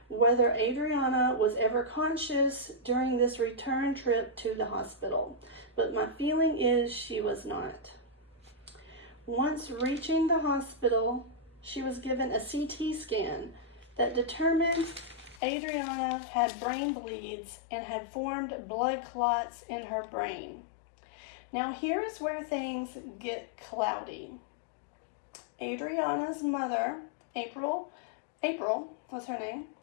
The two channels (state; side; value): drops out; right; at 15.4 s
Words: whether Adriana was ever conscious during this return trip to the hospital, but my feeling is she was not. Once reaching the hospital, she was given a CT scan that determined Adriana had brain bleeds and had formed blood clots in her brain. Now here's where things get cloudy. Adriana's mother, April was her name,